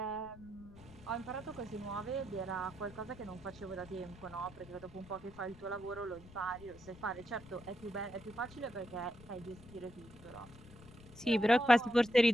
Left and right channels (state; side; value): noise; left; rumble, 19 dB below the sound